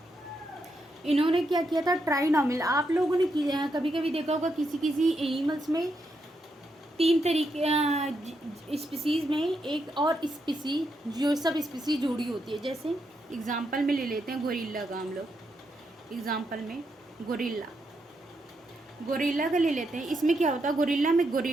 इन्होंने क्या किया था, ट्राइनोमियल। आप लोगों ने कभी कभी देखा होगा किसी एनिमल्स में 3 तरीके स्पीसीज़ में एक और स्पीसीज, जो सब स्पीसीज जुड़ी होती है। जैसे एग्जांपल में ले लेते हैं गोरिल्ला का हम लोग, एग्जांपल में गोरिल्ला, गोरिल्ला का ले लेते हैं। इसमें क्या होता है, गोरिल्ला में,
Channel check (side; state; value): both; normal; correlation 0.81